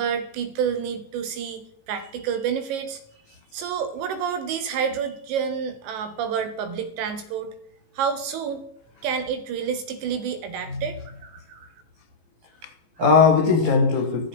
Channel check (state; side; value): late; left; 18 ms